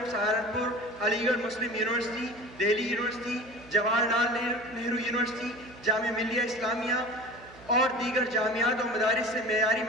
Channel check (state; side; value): noise; right; hum, 22 dB below the sound